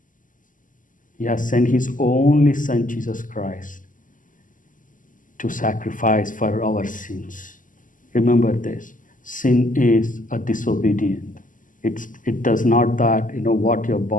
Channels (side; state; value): right; late; 0.38 ms